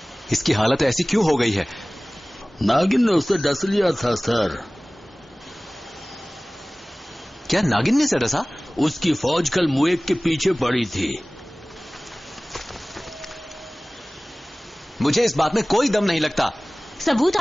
इसकी हालत ऐसी क्यों हो गई है? नागिन ने उसे डस लिया था सर। क्या नागिन ने उसे डसा? उसकी फौज कल मुएक के पीछे पड़ी थी। मुझे इस बात में कोई दम नहीं लगता। सबूत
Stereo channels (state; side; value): normal; both; correlation 0.98